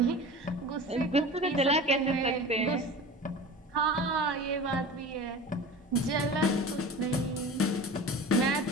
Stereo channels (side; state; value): both; normal; correlation 0.35